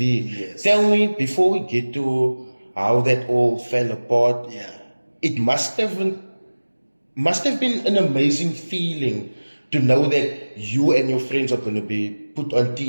Yes. Tell me, before we get to how that all fell apart, it must have been an amazing feeling to know that you and your friends are going to be put on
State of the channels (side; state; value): both; inverted; correlation -1.00